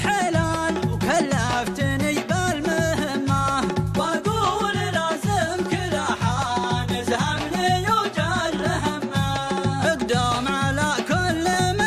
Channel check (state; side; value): identical; both; correlation 1.00